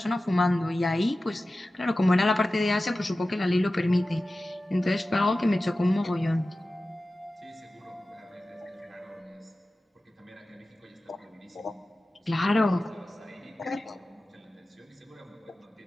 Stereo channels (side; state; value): both; normal; correlation 0.95